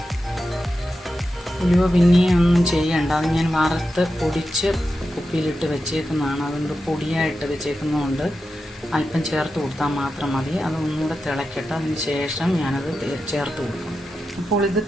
ഉലുവ പിന്നെയും ഒന്നും ചെയ്യണ്ട, അത് ഞാൻ വറുത്ത് പൊടിച്ച് കുപ്പിയിലിട്ട് വെച്ചേക്കുന്നതാണ്. അതുകൊണ്ട് പൊടിയായിട്ട് വെച്ചേക്കുന്നതുകൊണ്ട് അല്പം ചേർത്ത് കൊടുത്താൽ മാത്രം മതി. അത് ഒന്നുകൂടെ തിളക്കട്ടെ, അതിന് ശേഷം ഞാനത് ചേർത്ത് കൊടുക്കും. അപ്പോൾ ഇത്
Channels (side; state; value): both; normal; correlation 0.90